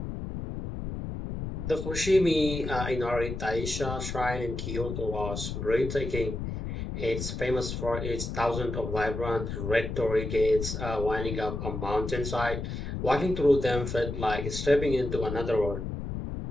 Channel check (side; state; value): left; noise; rumble, 5 dB below the sound